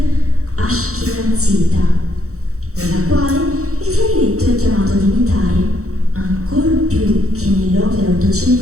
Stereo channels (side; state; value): left; late; 0.64 ms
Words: ashkenazita, nella quale il clarinetto è chiamato ad imitare, ancor più che nell'opera